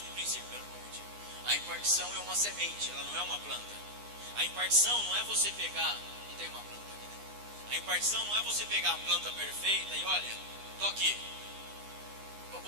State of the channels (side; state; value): left; late; 9.7 ms